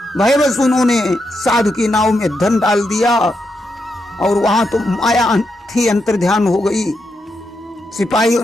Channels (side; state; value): both; normal; correlation 0.83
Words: भयवश उन्होंने साधु की नाव में धन डाल दिया और वहां तो माया थी अंतर्ध्यान हो गई। सिपाहियों